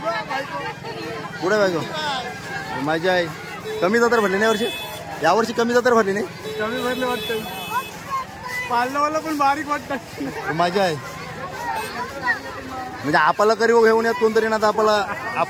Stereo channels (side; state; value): both; identical; correlation 1.00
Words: पुढे बायको मजा आहे. कमी जत्रा भरली नाही वर्षी, यावर्षी कमी जत्रा भरली नाही. कमी भरले वाटतं, पाळणावाला पण बारीक वाटतं. मजा आहे म्हणजे आपल्याला करी घेऊन यात कोणतरी ना, आपल्याला